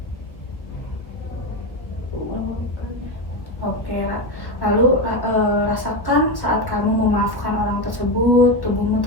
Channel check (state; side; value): late; right; 1.0 ms